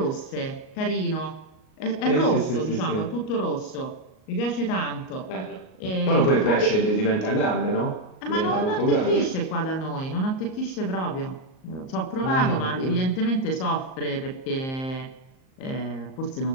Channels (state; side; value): late; right; 38 ms